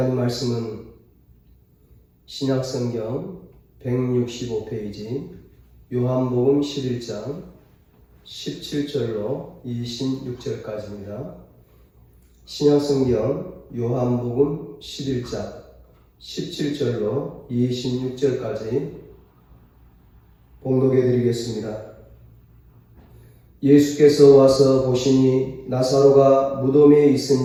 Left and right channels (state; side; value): identical; both; correlation 1.00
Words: 말씀은 신약성경 165페이지 요한복음 11장 17절로 26절까지입니다. 신약성경 요한복음 11장 17절로 26절까지 봉독해 드리겠습니다. 예수께서 와서 보시니 나사로가 무덤에